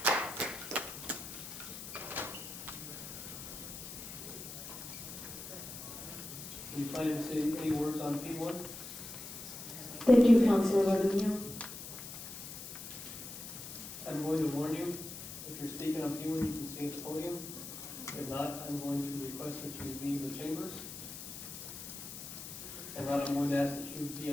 Do you plan to say any words on P1? Thank you, Councilor Larduno. I'm going to warn you, if you're speaking on P1, you can stay at the podium. If not, I'm going to request that you leave the chambers. And not, I'm going to ask that you be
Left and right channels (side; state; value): left; noise; hiss, 10 dB below the sound